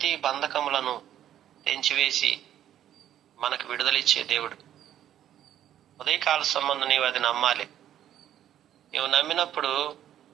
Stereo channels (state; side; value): quieter; left; 11.2 dB